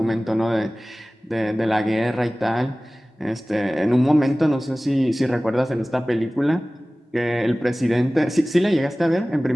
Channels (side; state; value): both; normal; correlation 0.98